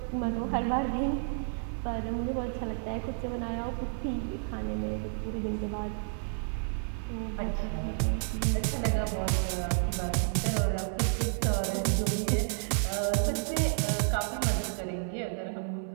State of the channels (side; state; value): left; silent; 57 dB below the other